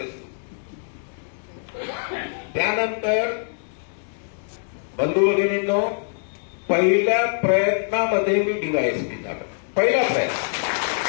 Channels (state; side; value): silent; right; digital silence